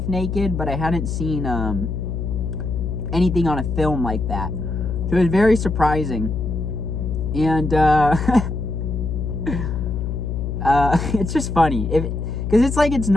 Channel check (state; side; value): noise; left; hum, 3 dB below the sound